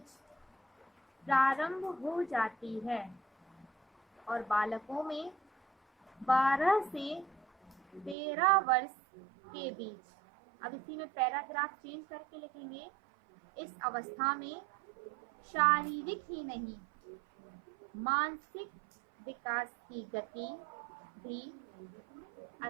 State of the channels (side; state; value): left; drops out; at 8.2 s